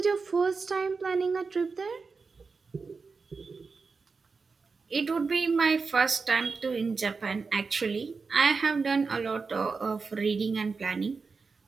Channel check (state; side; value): quieter; left; 4.7 dB